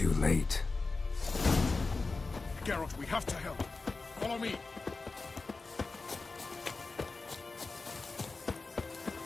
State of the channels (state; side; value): quieter; right; 3.8 dB